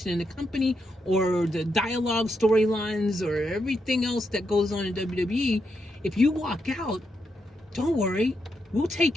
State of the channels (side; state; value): both; normal; correlation 0.82